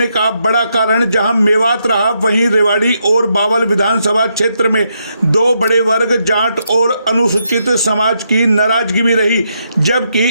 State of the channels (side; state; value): both; inverted; correlation -0.79